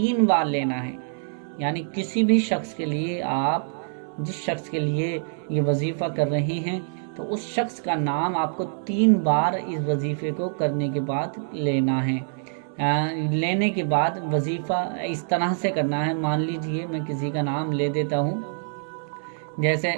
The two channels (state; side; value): silent; left; 62 dB below the other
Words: بار لینا ہے، یعنی کسی بھی شخص کے لیے آپ جس شخص کے لیے یہ وظیفہ کر رہے ہیں تو اس شخص کا نام آپ کو 3 بار اس وظیفے کو کرنے کے بعد لینا ہے۔ لینے کے بعد وظیفہ اس طرح سے کرنا ہے، مان لیجئے میں کسی کا نام لے دیتا ہوں، جیسے